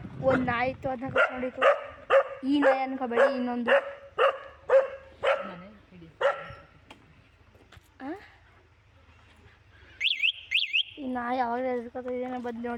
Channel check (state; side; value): identical; both; correlation 1.00